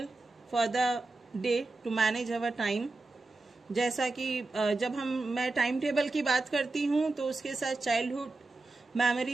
for the day to manage our time. जैसा कि जब मैं time table की बात करती हूँ तो उसके साथ चाइल्डहुड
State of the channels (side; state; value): left; quieter; 3.2 dB